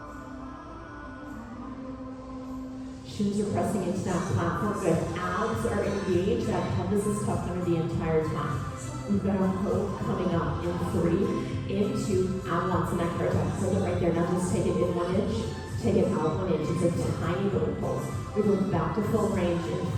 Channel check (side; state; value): both; identical; correlation 1.00